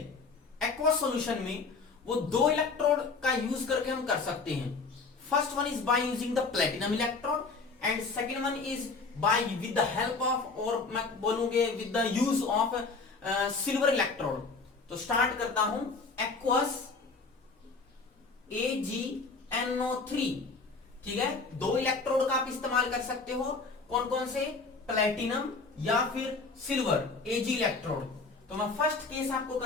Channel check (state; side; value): quieter; right; 4.2 dB